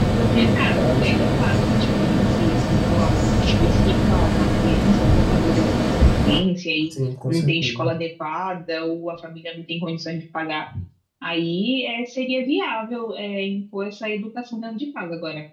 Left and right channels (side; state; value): both; identical; correlation 1.00